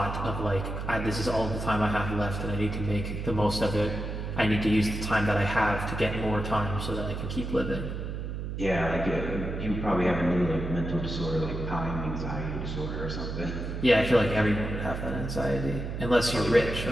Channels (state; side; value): noise; right; hum, 5 dB below the sound